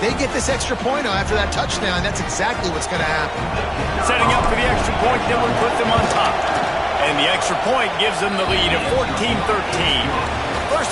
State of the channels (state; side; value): identical; both; correlation 1.00